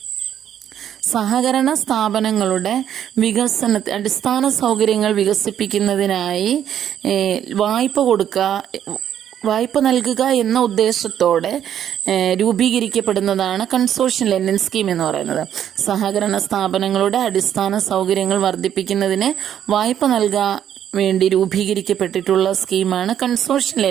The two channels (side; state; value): left; quieter; 10.0 dB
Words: സഹകരണ സ്ഥാപനങ്ങളുടെ അടിസ്ഥാന സൗകര്യങ്ങൾ വികസിപ്പിക്കുന്നതിനായി വായ്പ നൽകുക എന്ന ഉദ്ദേശത്തോടെ രൂപീകരിക്കപ്പെടുന്നതാണ് കൺസോർഷ്യൽ ലെൻഡിങ് സ്കീം എന്ന് പറയുന്നത്. സഹകരണ സ്ഥാപനങ്ങളുടെ അടിസ്ഥാന സൗകര്യങ്ങൾ വർദ്ധിപ്പിക്കുന്നതിന് വായ്പ നൽകാൻ വേണ്ടി രൂപീകരിക്കപ്പെട്ടിട്ടുള്ള സ്കീമാണ് കൺസോർഷ്യൽ